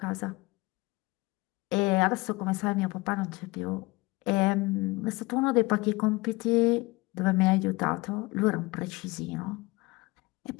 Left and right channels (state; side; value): quieter; right; 23.0 dB